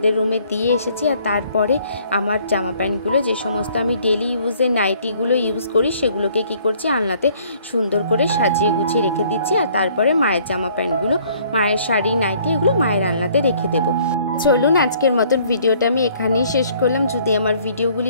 রুমে দিয়ে এসেছি, আর তারপরে আমার জামা প্যান্টগুলো যে সমস্ত আমি ডেলি ইউজের নাইটিগুলো ইউজ করি সেগুলোকে কি করছি আলনাতে সুন্দর করে সাজিয়ে গুছিয়ে রেখে দিচ্ছি। আর তারপরে মায়ের জামা প্যান্টগুলো, মায়ের শাড়ি নাইটি এগুলো মায়ের আলনাতে রেখে দেবো। চলুন আজকের মতন ভিডিওটা আমি এখানেই শেষ করলাম। যদি আমার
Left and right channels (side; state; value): both; inverted; correlation -0.60